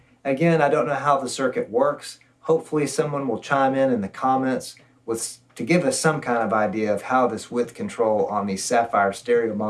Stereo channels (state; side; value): identical; both; correlation 1.00